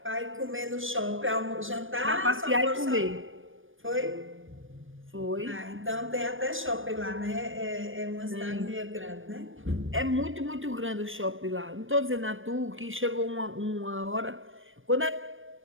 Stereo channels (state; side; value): late; left; 0.58 ms